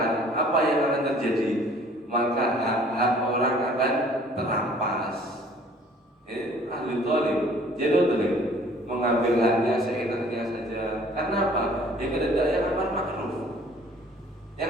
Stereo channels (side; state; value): both; normal; correlation 0.54